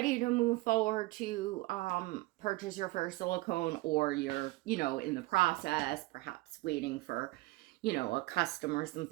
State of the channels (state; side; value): quieter; left; 20.6 dB